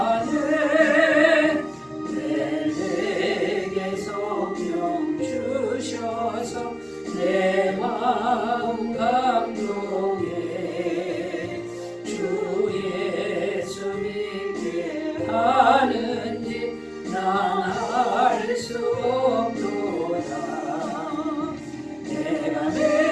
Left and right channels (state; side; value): identical; both; correlation 1.00